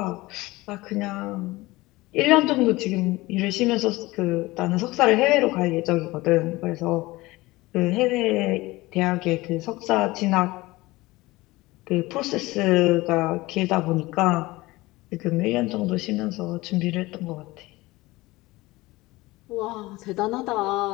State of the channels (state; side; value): quieter; right; 20.3 dB